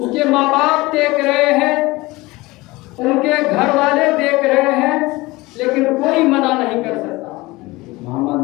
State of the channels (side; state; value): right; quieter; 21.3 dB